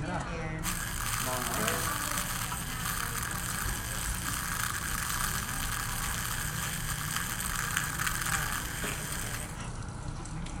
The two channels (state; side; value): identical; both; correlation 1.00